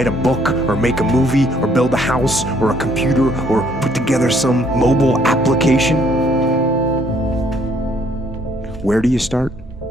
a book or make a movie or build a house or a computer or put together some mobile application? Where do you start?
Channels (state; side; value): normal; both; correlation 0.65